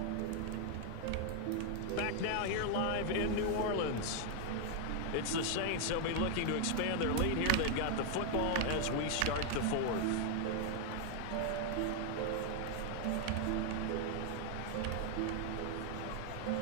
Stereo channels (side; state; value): both; different; correlation 0.00